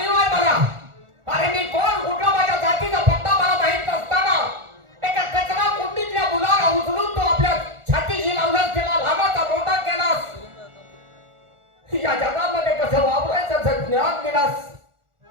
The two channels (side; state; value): left; late; 1.4 ms